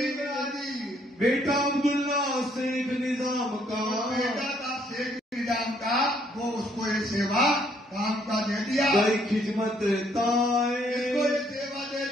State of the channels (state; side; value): normal; both; correlation 0.67